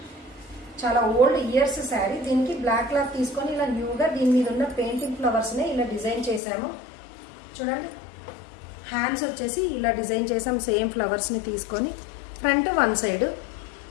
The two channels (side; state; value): right; drops out; at 6.4 s